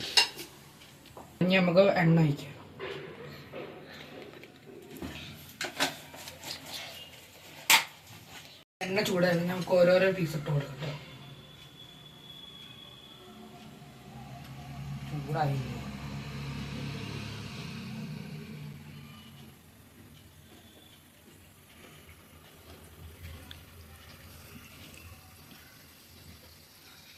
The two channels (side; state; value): both; identical; correlation 1.00